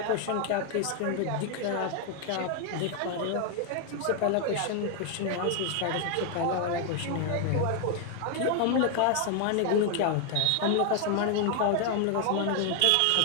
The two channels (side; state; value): both; different; correlation 0.00